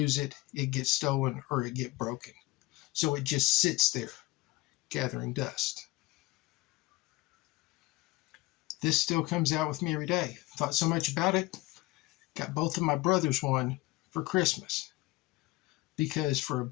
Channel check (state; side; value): quieter; right; 20.0 dB